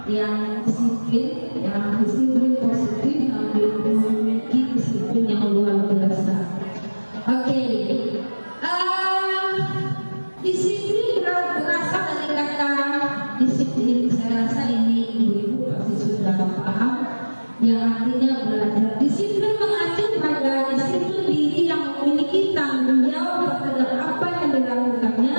yang disiplin positif, yang memiliki disiplin yang luar biasa. Oke, disiplin berasal dari kata disiplin. Saya rasa ini ibu-ibu pasti sudah paham, yang artinya belajar. Disiplin mengacu pada disiplin diri yang memiliki tanggung jawab terhadap apa yang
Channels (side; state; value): both; inverted; correlation -1.00